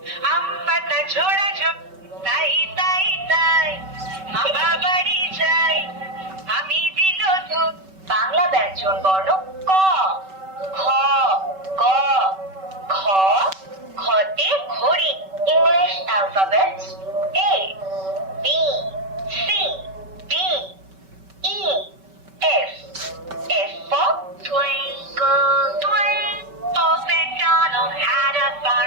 আমপাতা ঝোড়া ঝোপ, তাই তাই তাই, মা বাড়ি যাই, আমি দিল দুধ। বাংলা ব্যঞ্জন বর্ণ ক, খ, গ, খ, খতে ঘড়ি। English alphabet A, B, C, D, E, F. F for twinkle, twinkle, old MacDonald had a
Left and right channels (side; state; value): left; late; 5.2 ms